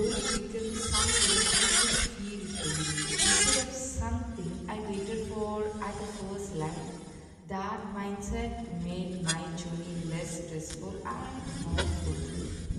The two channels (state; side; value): identical; both; correlation 1.00